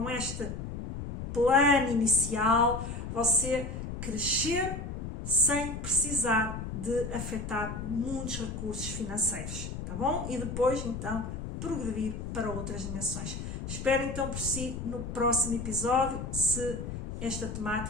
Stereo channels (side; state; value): left; noise; rumble, 6 dB below the sound